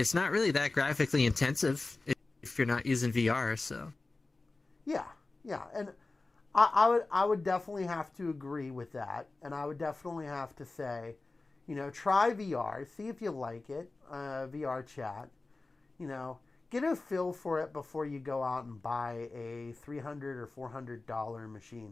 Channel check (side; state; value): right; quieter; 3.4 dB